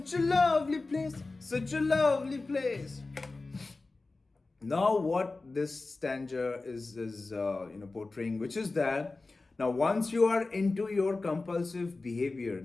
a lovely place, such a lovely place. Now what this stanza is portraying, which is that now once you are into your compulsive behavior,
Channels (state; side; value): quieter; right; 3.5 dB